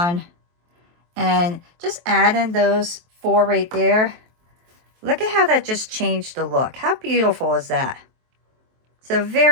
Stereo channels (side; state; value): left; late; 23 ms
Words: And just adding those 4 right there. Look at how that just changed the look. How beautiful is that? So